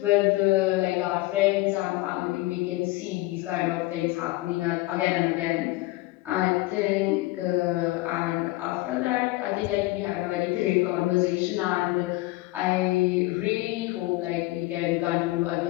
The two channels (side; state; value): right; quieter; 19.7 dB